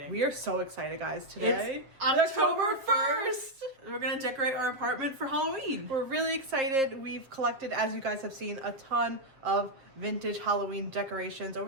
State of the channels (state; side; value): late; left; 7.5 ms